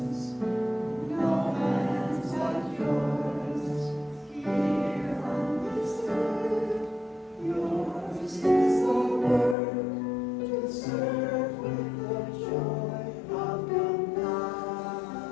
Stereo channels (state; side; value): drops out; right; at 9.6 s